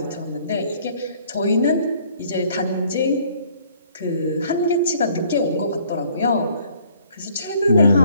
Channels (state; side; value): inverted; both; correlation -0.59